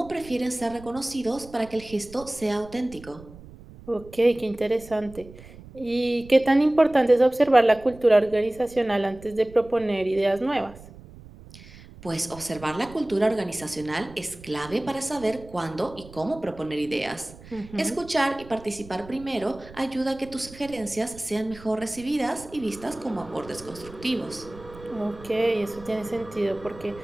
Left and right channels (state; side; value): noise; right; rumble, 19 dB below the sound